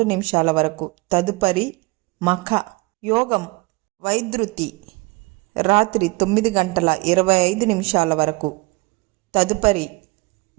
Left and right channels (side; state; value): left; quieter; 23.8 dB